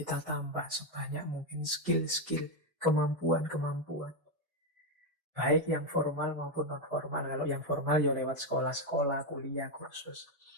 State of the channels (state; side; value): normal; both; correlation 0.06